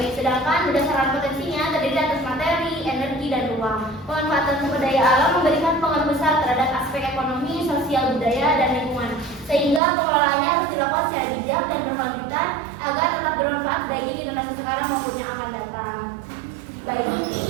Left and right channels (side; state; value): left; drops out; at 9.8 s